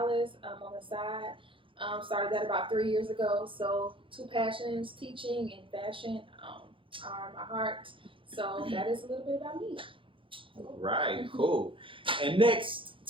on the side. Started that about 3 years ago. So 2 passions, teaching and fashion, are my heart. So that is a little bit about me. All right, cool. And next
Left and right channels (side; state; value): left; late; 0.25 ms